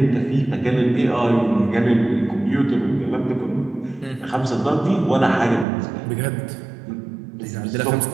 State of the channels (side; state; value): left; drops out; at 5.7 s